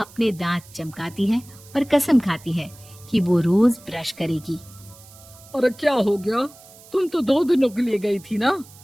दांत चमकाती है और कसम खाती है कि वो रोज ब्रश करेगी। अरे क्या हो गया? तुम तो 2 दिनों के लिए गई थी ना,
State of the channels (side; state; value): right; noise; hiss, 22 dB below the sound